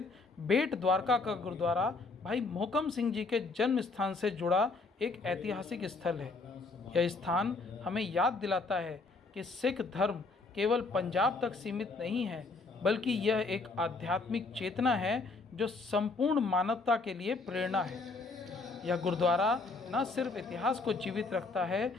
बेट द्वारका का गुरुद्वारा भाई मोहकम सिंह जी के जन्म स्थान से जुड़ा एक ऐतिहासिक स्थल है। यह स्थान हमें याद दिलाता है कि सिख धर्म केवल पंजाब तक सीमित नहीं है, बल्कि यह एक आध्यात्मिक चेतना है जो संपूर्ण मानवता के लिए प्रेरणा है। यह गुरुद्वारा न सिर्फ इतिहास को जीवित रखता है,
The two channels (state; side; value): quieter; right; 3.8 dB